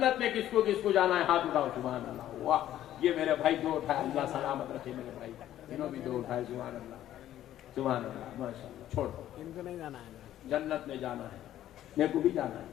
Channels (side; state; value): right; quieter; 12.4 dB